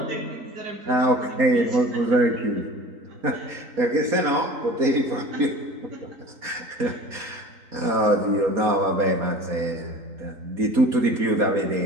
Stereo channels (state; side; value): late; left; 4.2 ms